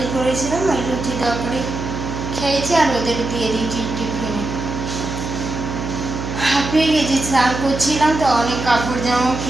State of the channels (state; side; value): noise; right; hum, 5 dB below the sound